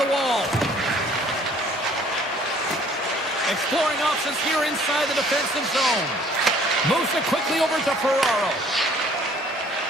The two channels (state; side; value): normal; both; correlation 0.57